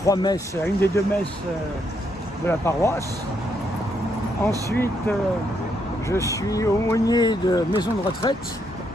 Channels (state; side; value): normal; both; correlation 0.76